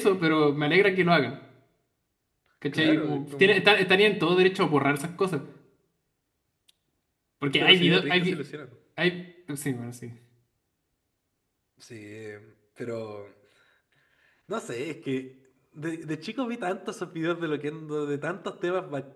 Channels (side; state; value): both; identical; correlation 1.00